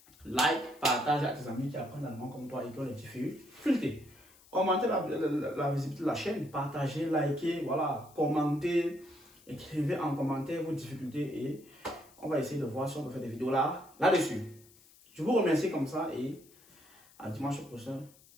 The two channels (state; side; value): noise; left; hiss, 26 dB below the sound